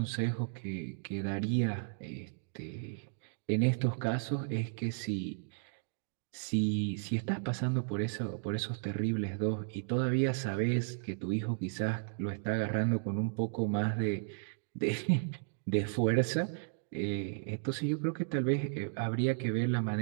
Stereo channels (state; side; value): silent; left; digital silence